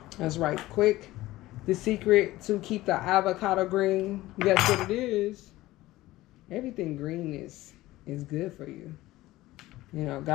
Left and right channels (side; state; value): right; quieter; 17.3 dB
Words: That's right. Quick. The secret to keep the avocado green. Guess what it is? Everything green is good for you. You know,